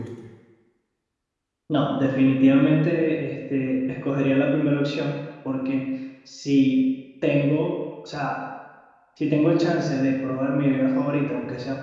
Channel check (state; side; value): identical; both; correlation 1.00